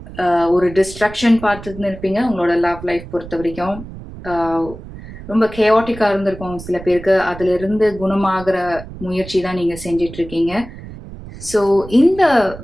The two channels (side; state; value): right; noise; rumble, 14 dB below the sound